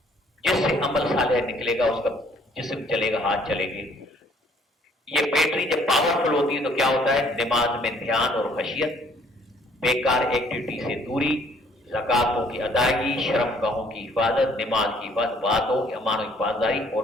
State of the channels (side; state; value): both; normal; correlation 0.61